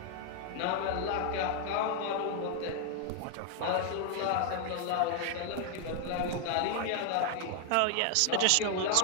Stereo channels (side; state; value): both; different; correlation 0.00